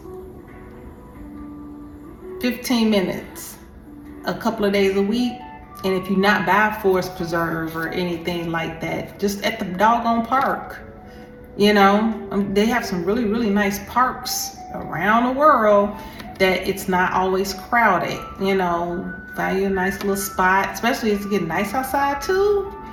15 minutes a couple of days a week. And if you're not by Forest Preserve or anything like that, just at the doggone park. You know, they have some really, really nice parks around the world that it's not always crowded. You know, find you a nice little spot, especially if it's getting nice outside too.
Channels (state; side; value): identical; both; correlation 1.00